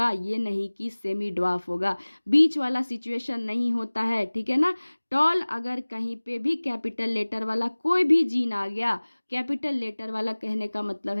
ये नहीं कि सेमी ड्वार्फ होगा। बीच वाला सिचुएशन नहीं होता है, ठीक है ना। टॉल अगर कहीं पे भी कैपिटल लेटर वाला कोई भी जीन आ गया, कैपिटल लेटर वाला कहने का मतलब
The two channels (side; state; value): both; inverted; correlation -1.00